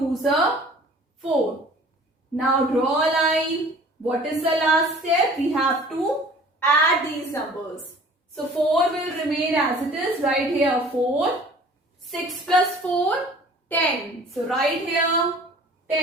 are 4. Now draw a line. What is the last step? We have to add these numbers. So 4 will remain as it is. Write here 4. 6 plus 4, 10. So write here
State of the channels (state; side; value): normal; both; correlation 0.48